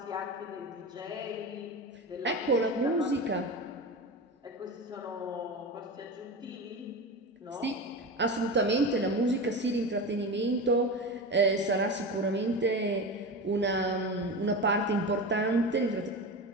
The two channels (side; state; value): both; normal; correlation 0.25